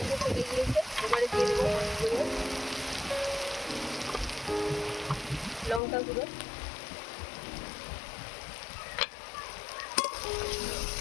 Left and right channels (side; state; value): right; drops out; at 5.8 s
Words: চলে গিয়েছে, এবারে দিয়ে দেবো লঙ্কা গুঁড়ো,